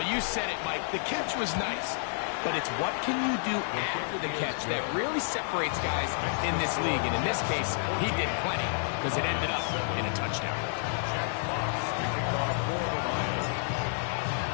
you said it, Mike. The catch was nice. But it's what can you do after the catch that really separates guys in this league. And in this case, he did plenty because it ended up in a touchdown.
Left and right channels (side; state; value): right; silent; digital silence